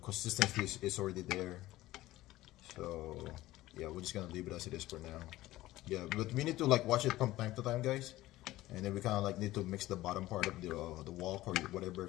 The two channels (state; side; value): quieter; right; 16.6 dB